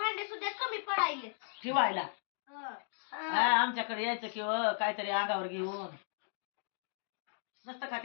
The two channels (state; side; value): silent; right; digital silence